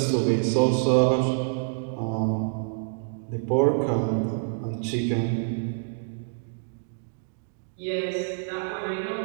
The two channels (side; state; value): left; silent; digital silence